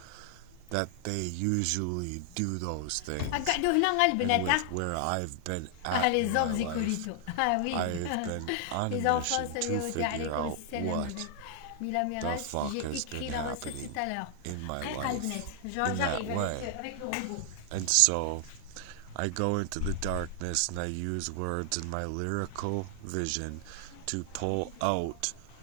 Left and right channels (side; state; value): both; different; correlation 0.00